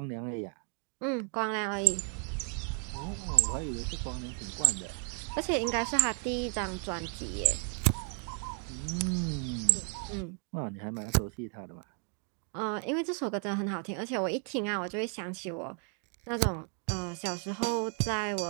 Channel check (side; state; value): left; quieter; 39.1 dB